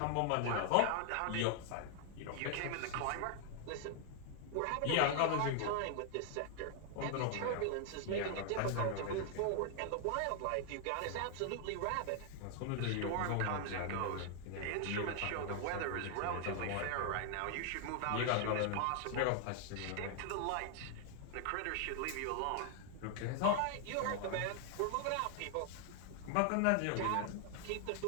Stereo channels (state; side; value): different; both; correlation 0.00